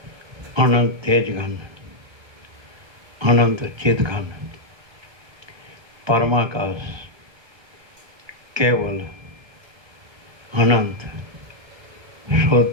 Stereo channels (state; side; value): late; left; 1.3 ms